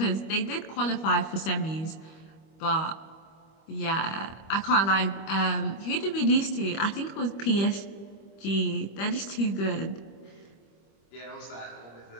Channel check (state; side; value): late; right; 25 ms